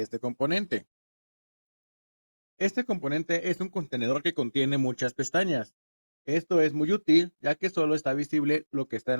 este componente. Este componente es un contenedor que contiene muchas pestañas. Esto es muy útil ya que solo está visible lo que está en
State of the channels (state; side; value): inverted; both; correlation -1.00